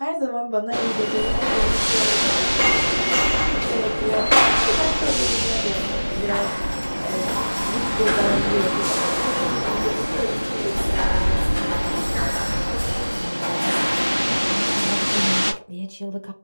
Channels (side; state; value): both; inverted; correlation -1.00